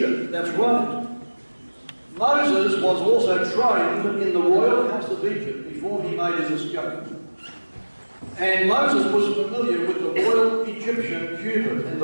that's right. Moses was also trained in the royal house of Egypt before he made his escape. And Moses was familiar with the royal Egyptian cubit, and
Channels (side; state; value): both; inverted; correlation -1.00